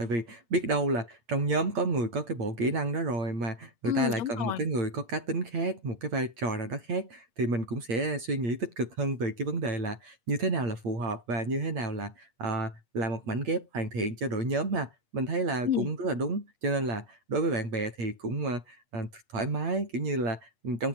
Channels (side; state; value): left; late; 9.0 ms